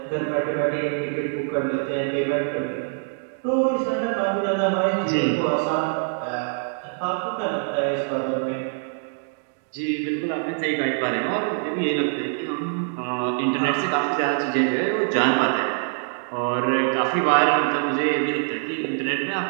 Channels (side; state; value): left; silent; 62 dB below the other